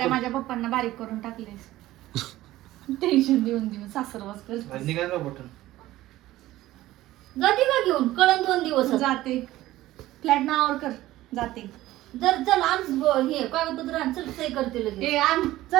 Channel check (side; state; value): left; quieter; 15.9 dB